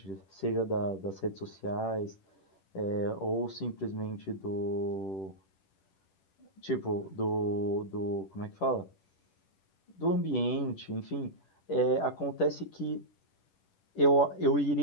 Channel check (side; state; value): right; late; 10 ms